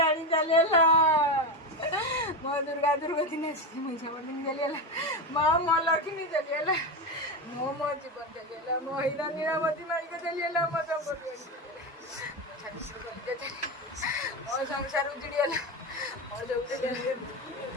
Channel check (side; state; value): both; normal; correlation 0.16